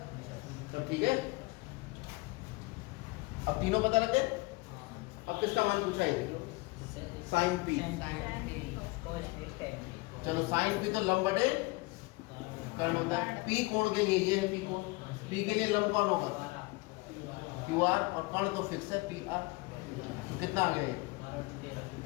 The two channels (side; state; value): right; quieter; 24.6 dB